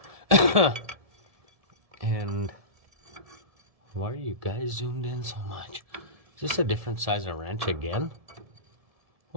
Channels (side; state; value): left; late; 1.7 ms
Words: And why are you guys zoomed in so much? Is this a different size of wrench again?